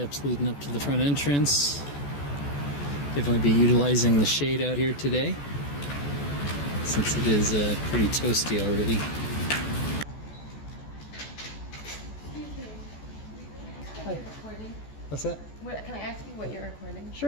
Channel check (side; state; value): right; late; 14 ms